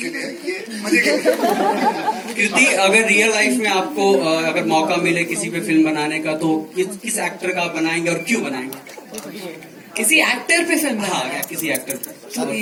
लिए, ये मजे के लिए. कृति, अगर रियल लाइफ में आपको अगर मौका मिले किसी पे फिल्म बनाने का तो किस एक्टर का आप बनाएंगे और क्यों बनाएंगे? किसी एक्टर पे फिल्म हाँ, किसी एक्टर पे. तो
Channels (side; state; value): both; identical; correlation 1.00